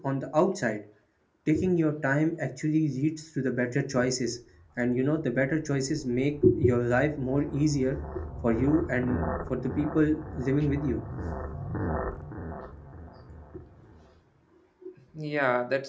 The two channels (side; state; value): both; identical; correlation 1.00